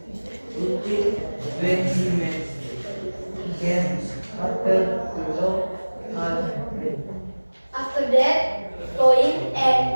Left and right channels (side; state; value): both; inverted; correlation -1.00